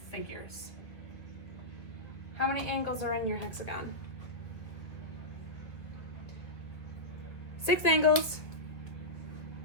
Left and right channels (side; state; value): right; late; 1.4 ms